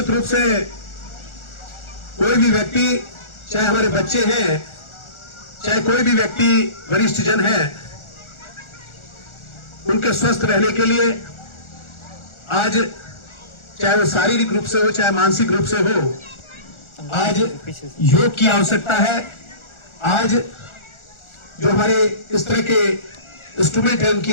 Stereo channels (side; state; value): right; late; 1.4 ms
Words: रूप से कोई भी व्यक्ति, चाहे हमारे बच्चे हैं, चाहे कोई भी व्यक्ति वरिष्ठ जन है, उनके स्वस्थ रहने के लिए आज चाहे वो शारीरिक रूप से हो चाहे मानसिक रूप से हो, आज योग की आवश्यकता है। आज जो हमारे इस तरह के इंस्ट्रूमेंट है उनकी